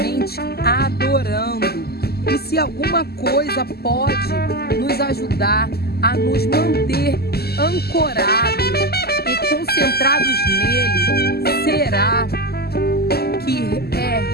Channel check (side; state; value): right; late; 0.46 ms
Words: adorando. E se alguma coisa pode nos ajudar a nos manter ancorados e concentrados nele, será que é